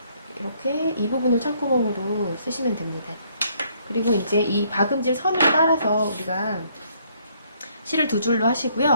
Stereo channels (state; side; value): inverted; both; correlation -0.67